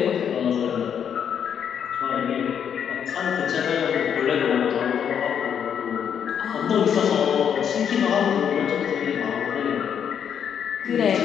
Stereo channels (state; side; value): quieter; right; 8.2 dB